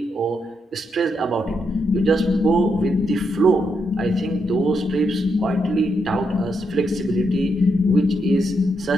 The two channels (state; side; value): normal; both; correlation 0.81